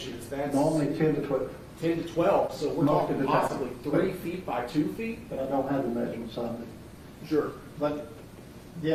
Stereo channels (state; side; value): identical; both; correlation 1.00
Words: that's Normally 10 to 12, 10 to 12. So we're Most talking of the time. possibly 3 feet by 2 feet? but I don't have the measurements on it. Sure. But,